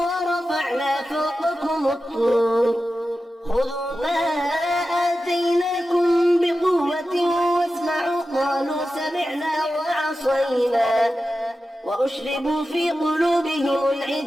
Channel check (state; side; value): normal; both; correlation 0.93